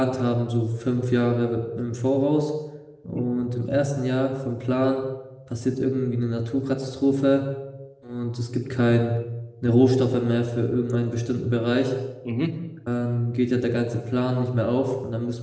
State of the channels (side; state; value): both; identical; correlation 1.00